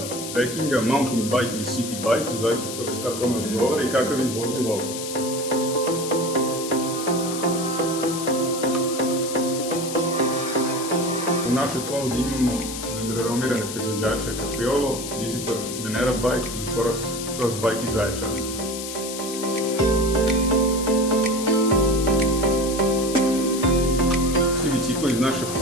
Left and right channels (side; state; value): left; noise; hiss, 8 dB below the sound